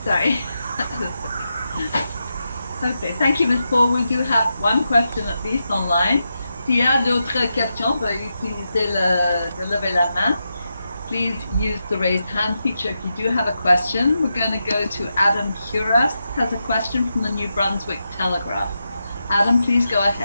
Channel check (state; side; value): inverted; both; correlation -0.87